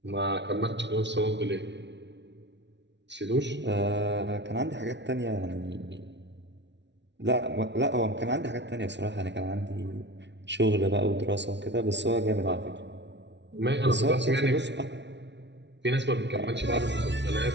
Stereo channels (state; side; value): late; left; 0.51 ms